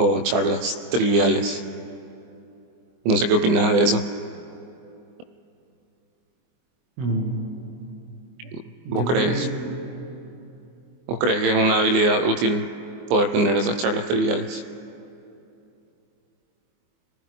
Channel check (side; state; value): left; late; 24 ms